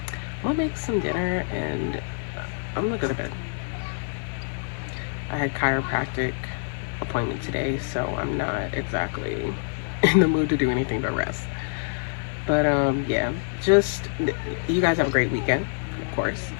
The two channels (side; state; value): right; silent; digital silence